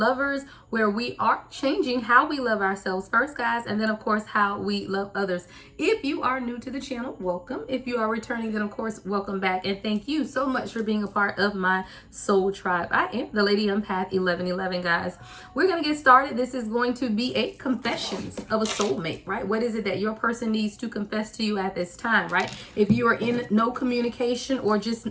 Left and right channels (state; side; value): identical; both; correlation 1.00